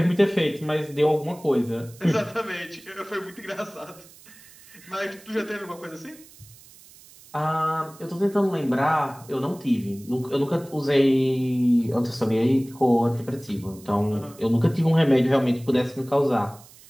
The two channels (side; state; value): right; noise; hiss, 23 dB below the sound